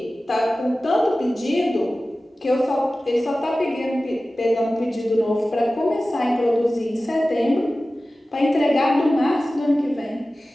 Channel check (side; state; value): both; normal; correlation 0.96